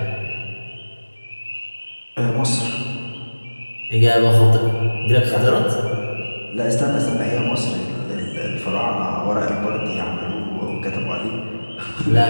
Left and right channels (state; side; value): inverted; both; correlation -1.00